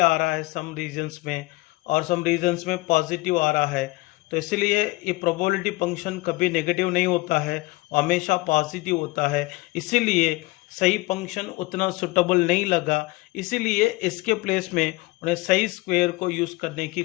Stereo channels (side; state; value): right; quieter; 21.6 dB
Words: रहा है सम रीजन्स में, और सम रीजन्स में पॉजिटिव आ रहा है। तो इसलिए ये प्रोबेबिलिटी फंक्शन कभी नेगेटिव नहीं होता है, हमेशा पॉजिटिव होता है। इसीलिए सही फंक्शन उतना सुटेबल नहीं लगा, इसीलिए इसके प्लेस में उन्हें सही स्क्वायर को यूज़ करने की